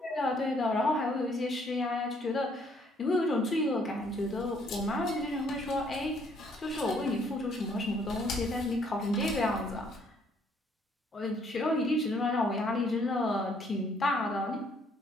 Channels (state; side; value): normal; both; correlation 0.66